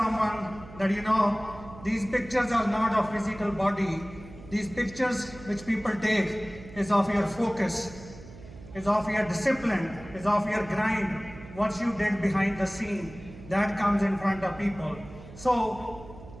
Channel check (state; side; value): noise; right; hum, 17 dB below the sound